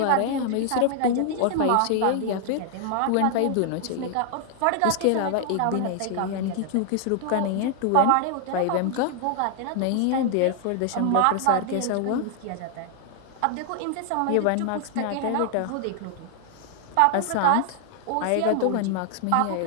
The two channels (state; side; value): different; both; correlation 0.00